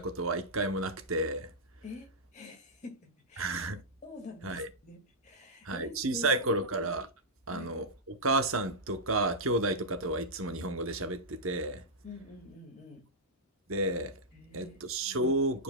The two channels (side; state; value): both; normal; correlation -0.10